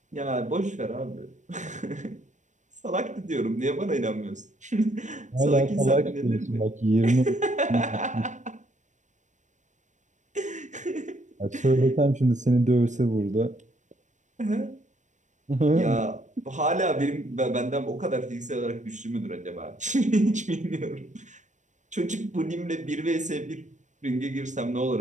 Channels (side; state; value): left; late; 0.35 ms